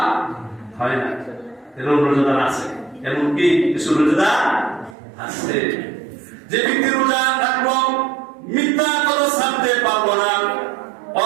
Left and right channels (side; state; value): left; drops out; at 5.0 s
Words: হয় না। এরকম রোজাদার আছে, এমনকি কিছু রোজাদার আছে যে ব্যক্তি রোজা রাখলো, মিথ্যা কথা ছাড়তে পারলো না,